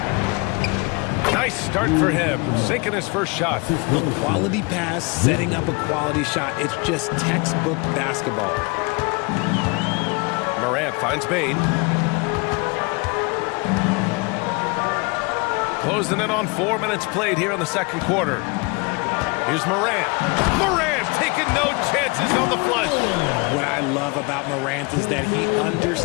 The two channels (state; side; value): quieter; right; 28.8 dB